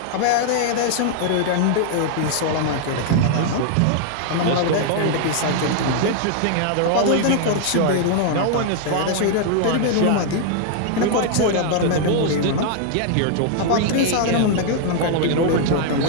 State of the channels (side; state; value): both; different; correlation 0.00